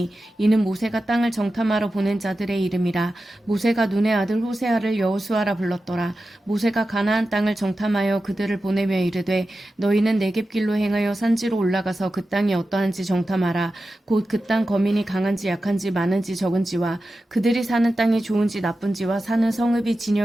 이는 모세가 땅을 정탐하러 보낸 자들의 이름이라. 모세가 눈의 아들 호세아를 여호수아라 불렀더라. 모세가 가나안 땅을 정탐하여 그들을 보내며 이르되 너희는 네겝길로 행하여 산지로 올라가서 그 땅이 어떠한지 정탐하라. 곧 그 땅 거민이 강한지 약한지 많은지 적은지와 그들이 사는 땅이 좋은지 나쁜지와 사는 성읍이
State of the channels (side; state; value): both; normal; correlation 0.92